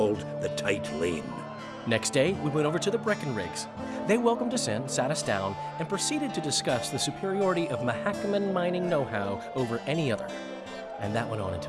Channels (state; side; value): identical; both; correlation 1.00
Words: the Tight Lane. Next day, we went over to the Breckenrigs. They welcomed us in, sat us down, and proceeded to discuss the superiority of Mahakaman mining know-how over any other. And that went on